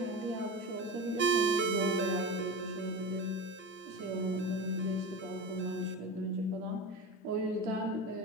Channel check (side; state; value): both; normal; correlation 0.26